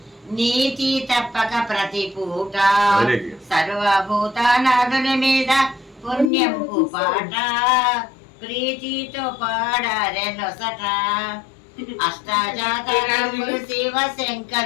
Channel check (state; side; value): drops out; right; at 6.3 s